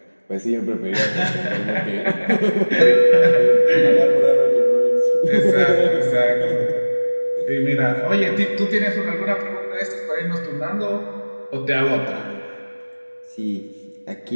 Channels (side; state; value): both; inverted; correlation -1.00